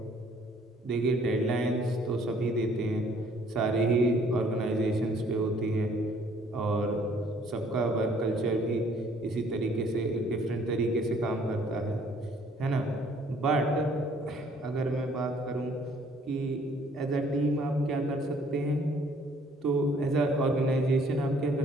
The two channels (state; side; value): normal; both; correlation 0.60